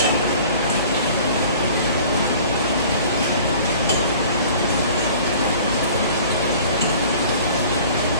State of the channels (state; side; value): inverted; both; correlation -0.48